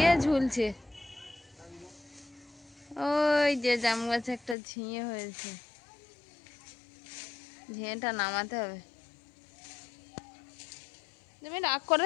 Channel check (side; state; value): right; drops out; at 4.5 s